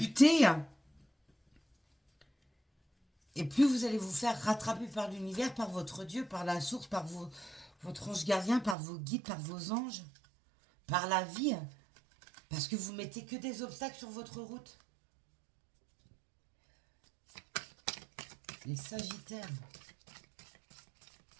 et plus vous allez vous faire rattraper par l'univers, par votre Dieu, par la source, par votre ange gardien, par vos guides, par vos anges, par la vie, parce que vous mettez que des obstacles sur votre route. Les Sagittaires.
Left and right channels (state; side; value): drops out; left; at 8.8 s